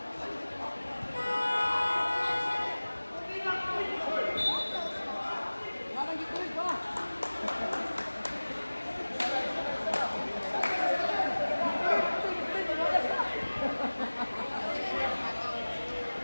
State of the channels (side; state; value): both; inverted; correlation -1.00